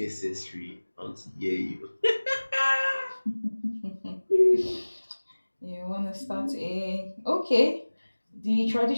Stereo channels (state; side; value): inverted; both; correlation -1.00